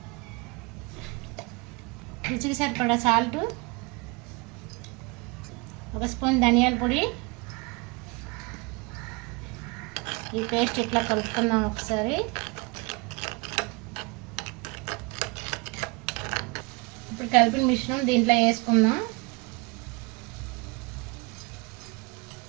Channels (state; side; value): quieter; left; 27.3 dB